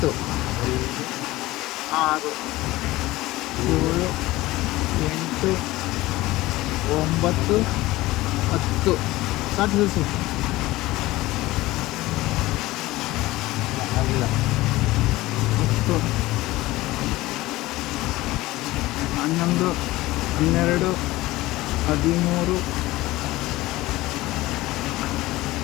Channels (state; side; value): quieter; right; 18.4 dB